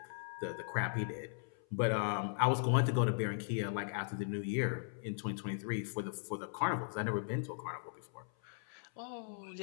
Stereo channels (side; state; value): right; silent; 52 dB below the other